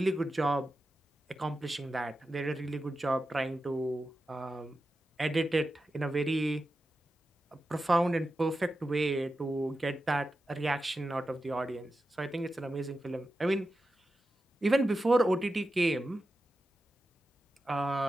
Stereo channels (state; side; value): normal; both; correlation 0.91